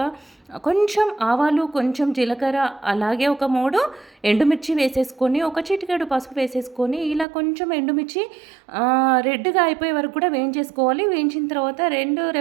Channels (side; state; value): left; drops out; at 7.2 s